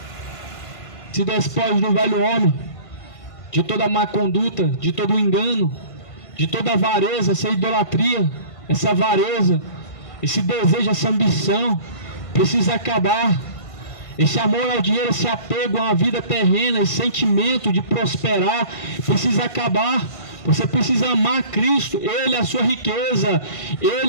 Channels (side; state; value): right; late; 1.5 ms